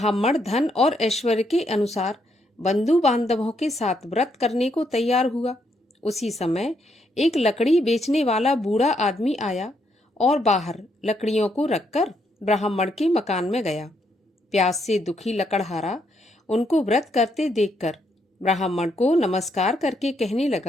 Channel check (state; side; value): normal; both; correlation 0.76